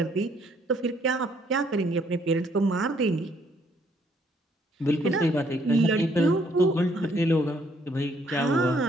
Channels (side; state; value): both; normal; correlation 0.67